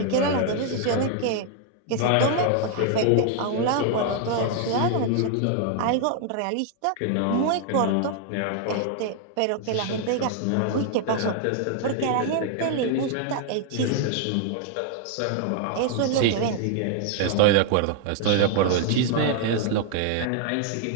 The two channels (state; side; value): different; both; correlation 0.00